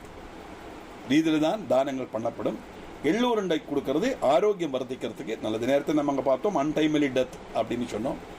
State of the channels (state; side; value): identical; both; correlation 1.00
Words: ரீதியில் தான் தானங்கள் பண்ணப்படும். எள்ளூருண்டை கொடுக்கறது ஆரோக்கியம் வர்த்திக்கிறதுக்கு நல்லது. நேரத்தை நம்ம அங்கே பார்த்தோம், அன்டைம்லி டெத் அப்படின்னு சொன்னோம்.